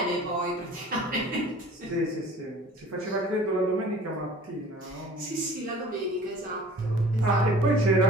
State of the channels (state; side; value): normal; both; correlation 0.46